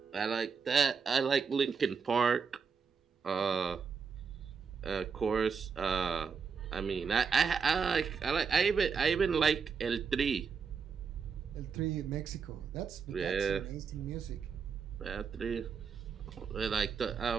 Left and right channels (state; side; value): quieter; left; 5.9 dB